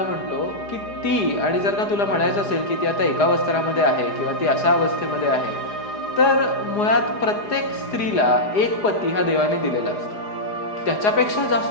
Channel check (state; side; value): late; right; 4.9 ms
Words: म्हणतो की ती, आणि जर का तुला म्हणायचं असेल की ती आता एका वस्त्रामध्ये आहे किंवा ती अशा अवस्थेमध्ये आहे, तर मुळात प्रत्येक स्त्रीला एक पती हा देवाने दिलेला असतो. त्याच्यापेक्षा